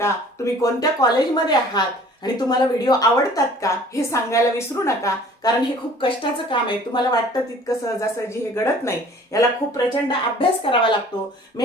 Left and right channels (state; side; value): normal; both; correlation 0.51